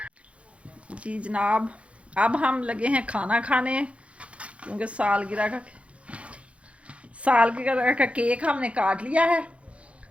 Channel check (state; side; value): late; left; 0.062 ms